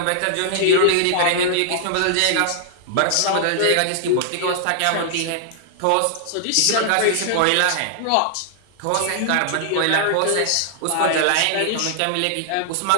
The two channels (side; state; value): both; different; correlation -0.01